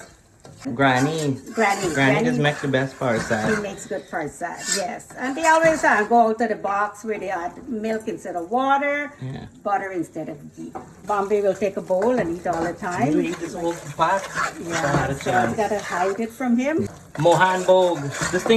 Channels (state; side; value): identical; both; correlation 1.00